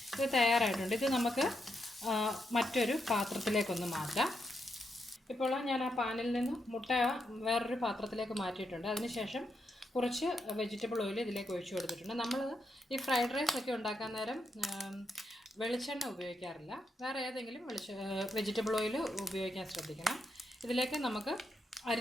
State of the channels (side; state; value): both; normal; correlation 0.82